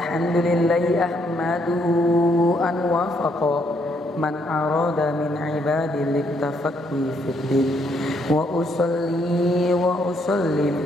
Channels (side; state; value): both; normal; correlation 0.72